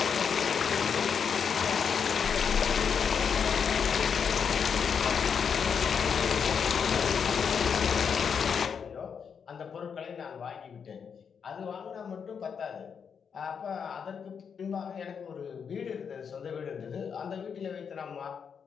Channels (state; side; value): quieter; right; 6.7 dB